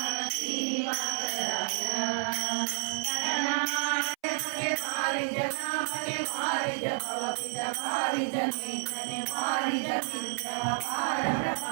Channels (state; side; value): silent; left; 58 dB below the other